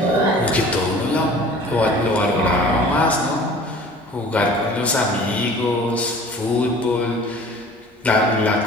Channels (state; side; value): normal; both; correlation 0.46